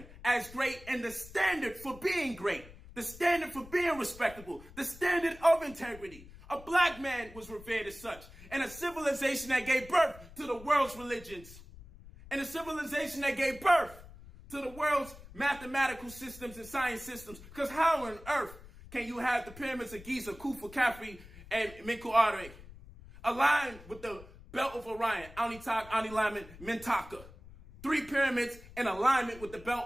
as great, and the standard for being great, the standard for being respectable, the standard of integrity. A black man was revered as such. And a civilization that gave birth to the world's religions. And a civilization that gave birth to the world's mathematical systems and science systems. Because how on earth can you have the pyramids of Giza, Khufu, Khafre, and Menkaure aligned with the belt of Orion, Anitak, Anilamet, Mentaka? 3 pyramids in alignment with the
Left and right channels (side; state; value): left; noise; rumble, 18 dB below the sound